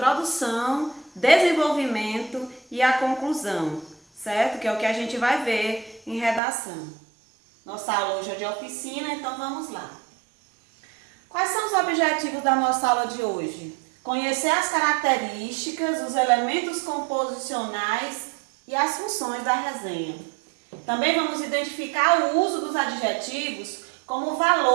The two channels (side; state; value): left; drops out; at 6.4 s